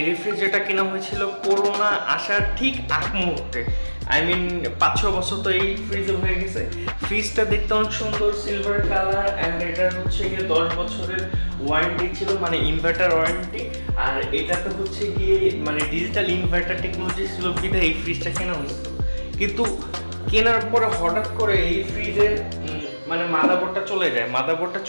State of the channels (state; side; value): inverted; both; correlation -1.00